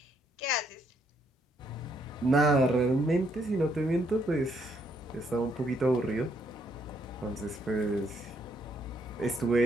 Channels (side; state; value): both; normal; correlation 0.72